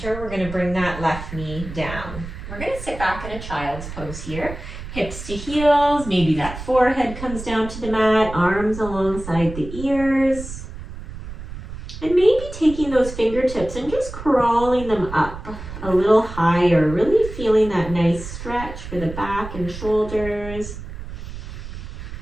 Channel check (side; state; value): right; noise; rumble, 11 dB below the sound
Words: we're going to bring that left knee down. We're going to sit back in a child's pose here. Hips to heels, maybe that forehead comes down to the mat, arms alongside the ears. And maybe taking those fingertips and just crawling them up a little higher, really feeling that nice stretch for the back and shoulders.